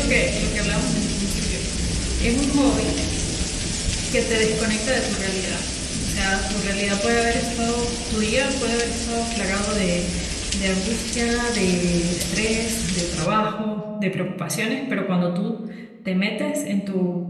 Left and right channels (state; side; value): identical; both; correlation 1.00